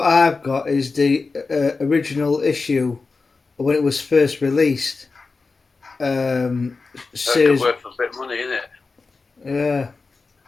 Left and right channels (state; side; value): quieter; right; 4.1 dB